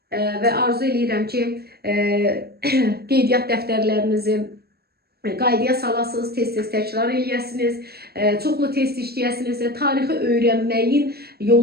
və arzu edirəm ki, qeydiyyat dəftərlərinizi qaydaya salasınız, tez-tez təkrar eləyəsiniz, çoxlu test işləyəsiniz. Tarixi öyrənməyin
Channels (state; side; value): late; left; 0.46 ms